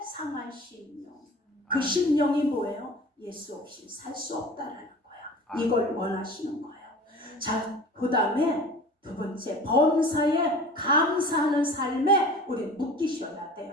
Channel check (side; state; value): both; normal; correlation 0.40